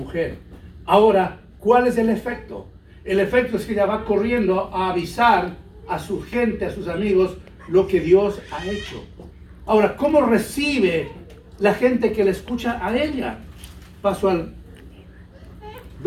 Ahora, ¿cuál es el efecto? El efecto es que ella va corriendo a avisar a su gente, a sus amigos, lo que Dios ha hecho. Ahora, ¿cómo recibe la gente que le escucha a ella? Paso al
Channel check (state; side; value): identical; both; correlation 1.00